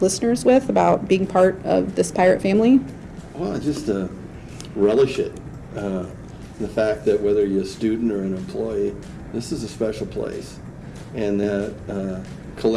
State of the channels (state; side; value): identical; both; correlation 1.00